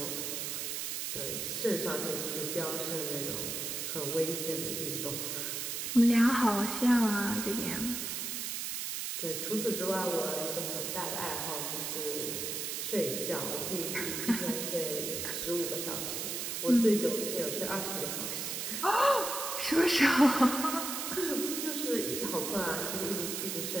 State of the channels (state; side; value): noise; right; hiss, 3 dB below the sound